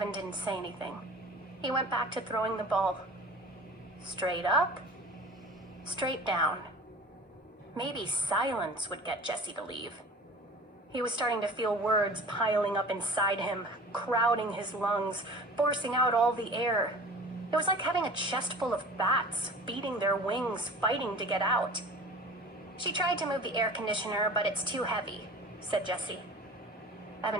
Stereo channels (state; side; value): normal; both; correlation 0.41